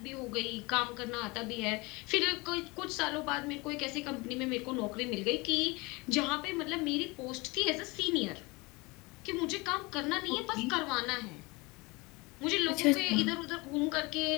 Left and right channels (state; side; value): quieter; right; 25.3 dB